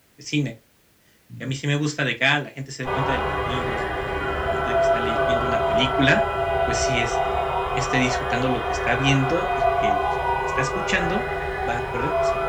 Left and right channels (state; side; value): identical; both; correlation 1.00